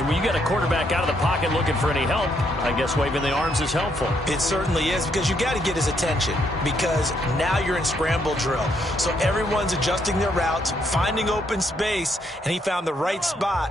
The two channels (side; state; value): both; normal; correlation 0.74